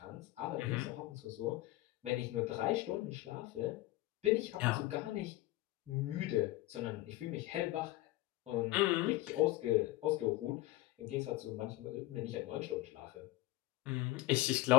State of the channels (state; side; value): quieter; right; 17.8 dB